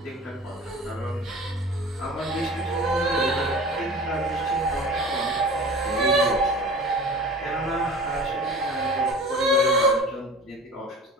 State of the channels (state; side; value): normal; both; correlation 0.38